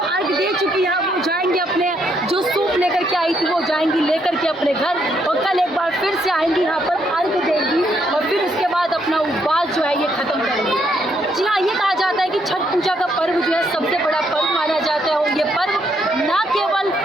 दे चुकी है। वो जाएंगे अपने जो सूप लेकर के आई थी वो जाएंगी लेकर के अपने घर, और कल एक बार फिर से आएंगी यहाँ पर अर्घ देंगी और फिर उसके बाद अपना उपवास जो है ये खत्म करेंगी। जी हाँ, ये कहा जाता है कि छठ पूजा का पर्व जो है सबसे बड़ा पर्व माना जाता है। और ये पर्व ना केवल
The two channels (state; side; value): normal; both; correlation 0.74